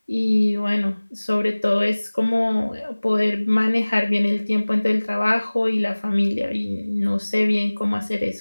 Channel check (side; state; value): both; inverted; correlation -1.00